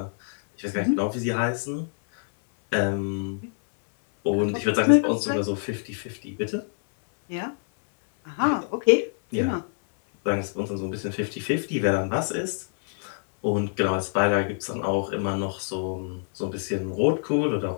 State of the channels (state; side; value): silent; right; 61 dB below the other